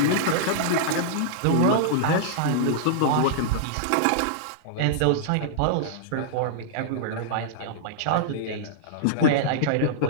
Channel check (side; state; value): both; different; correlation -0.01